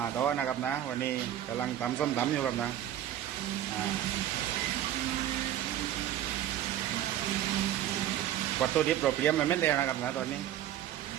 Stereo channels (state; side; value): quieter; left; 11.8 dB